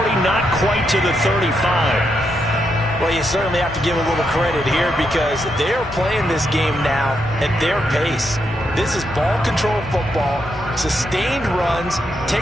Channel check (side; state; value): both; normal; correlation 0.81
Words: not quite to the 35. Well, you certainly have to give a little credit here, because they're playing this game now at their pace. This is ball control football, sustained runs,